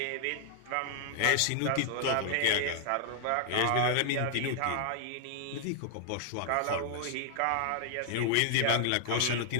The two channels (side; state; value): both; different; correlation 0.00